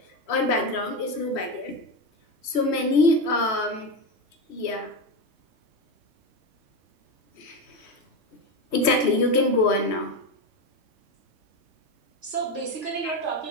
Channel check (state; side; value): late; left; 3.1 ms